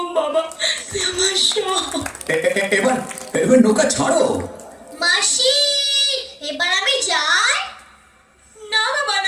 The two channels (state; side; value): identical; both; correlation 1.00